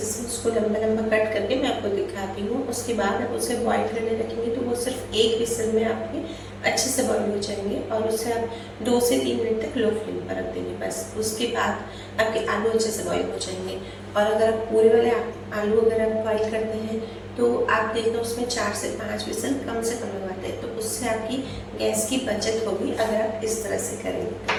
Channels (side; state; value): both; identical; correlation 1.00